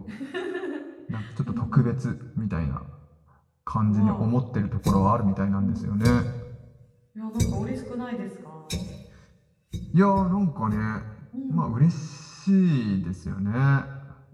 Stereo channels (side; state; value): both; identical; correlation 1.00